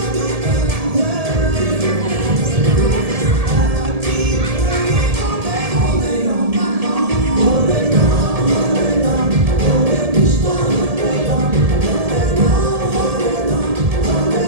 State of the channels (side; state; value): left; late; 1.7 ms